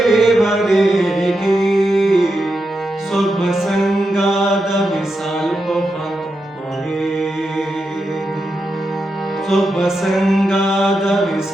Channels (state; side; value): normal; both; correlation 0.87